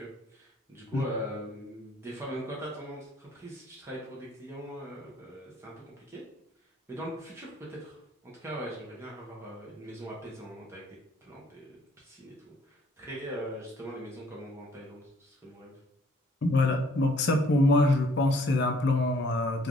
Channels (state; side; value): normal; both; correlation 0.61